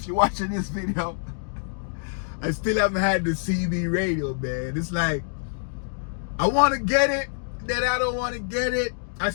you're watching this video. I still haven't had the CB radio, man. It's like, I wanna get it, then I don't wanna get it. I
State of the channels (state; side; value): silent; right; digital silence